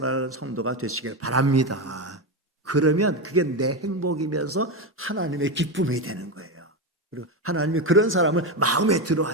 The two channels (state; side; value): normal; both; correlation 0.14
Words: 성도가 되시길 바랍니다. 그러면 그게 내 행복이면서 하나님의 기쁨이 되는 거예요. 그리고 하나님이 그런 사람을 마음에 들어